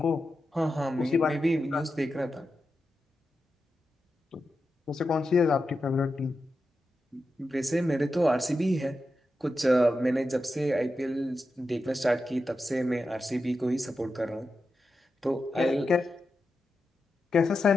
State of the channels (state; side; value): normal; both; correlation 0.90